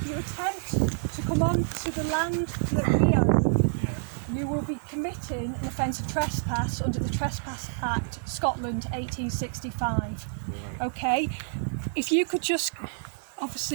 you attempt to come onto the land that we own, you will be committing an offence of trespass under the Trespass Act, Scotland, 1865. Okay? If you could just...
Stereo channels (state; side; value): silent; left; 59 dB below the other